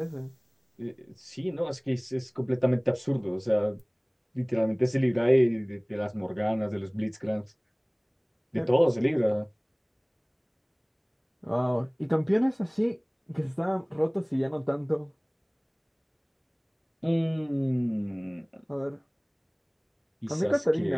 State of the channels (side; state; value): both; identical; correlation 1.00